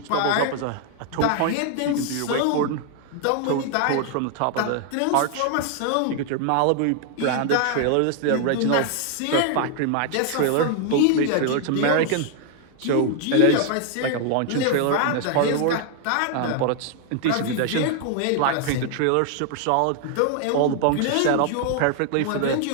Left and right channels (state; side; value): different; both; correlation 0.00